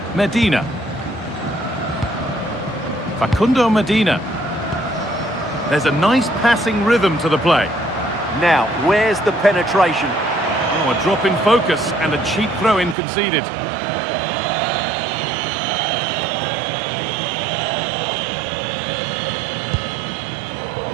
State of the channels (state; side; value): drops out; left; at 13.0 s